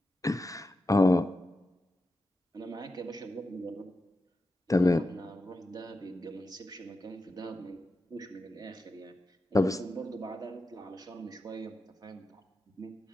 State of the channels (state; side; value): normal; both; correlation 0.89